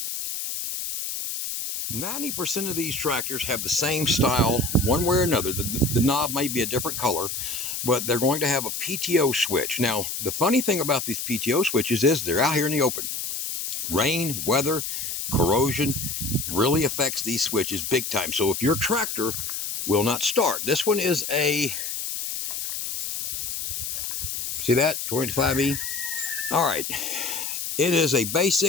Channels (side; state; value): left; noise; hiss, 4 dB below the sound